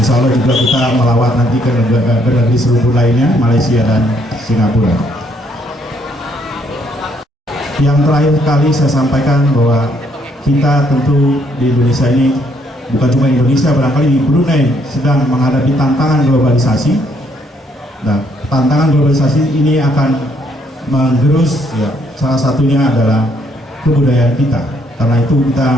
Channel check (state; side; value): normal; both; correlation 0.69